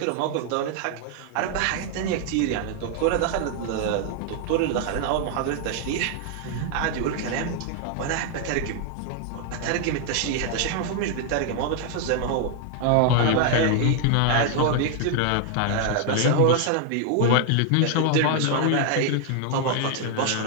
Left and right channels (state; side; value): different; both; correlation 0.00